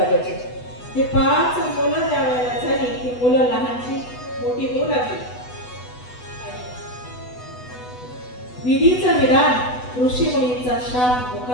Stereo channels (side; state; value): right; late; 8.1 ms